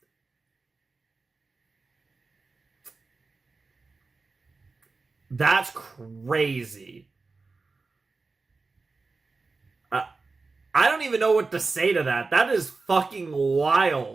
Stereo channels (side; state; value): left; quieter; 3.9 dB